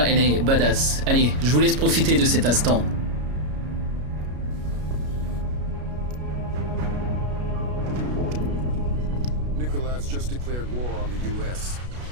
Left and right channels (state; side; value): late; left; 33 ms